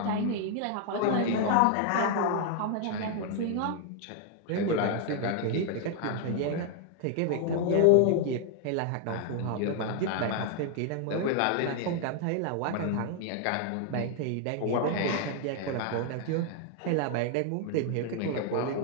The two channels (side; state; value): both; different; correlation 0.00